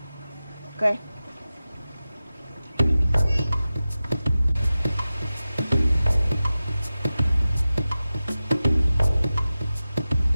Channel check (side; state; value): both; inverted; correlation -0.94